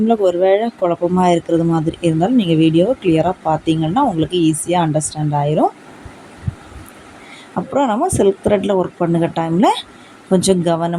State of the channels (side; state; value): both; identical; correlation 1.00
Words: ஒரு வேளை குழப்பமாக இருக்கிறது மாதிரி இருந்தாலும் நீங்கள் வீடியோவை கிளியராக பார்த்தீங்கன்னா உங்களுக்கு ஈஸியாக அண்டர்ஸ்டாண்ட் ஆயிரும். அப்புறம் நம்ம சில்க் த்ரெட்டில் ஒர்க் பண்ணுற டைமில் கொஞ்சம்